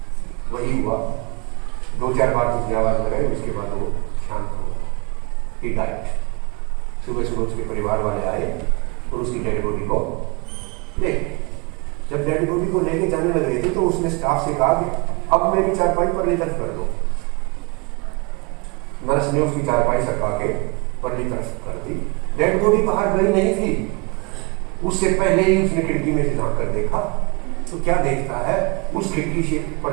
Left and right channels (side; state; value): left; quieter; 30.2 dB